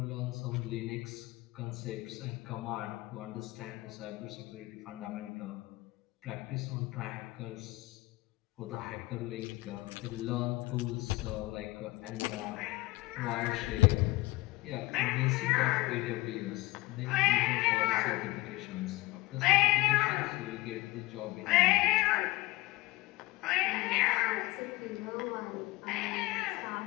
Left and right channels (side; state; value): right; quieter; 20.2 dB